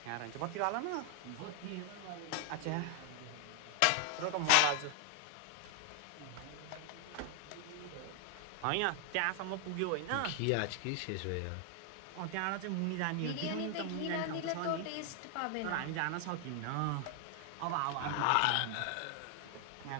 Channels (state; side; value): different; both; correlation 0.00